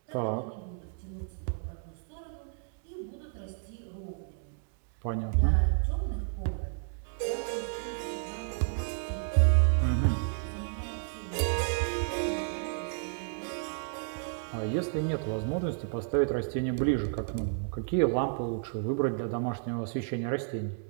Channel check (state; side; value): silent; left; digital silence